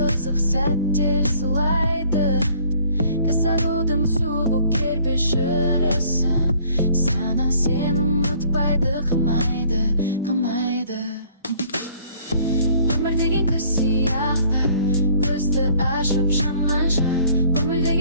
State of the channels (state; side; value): inverted; both; correlation -0.57